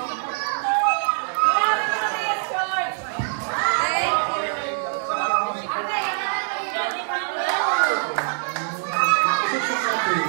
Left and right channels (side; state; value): left; silent; 63 dB below the other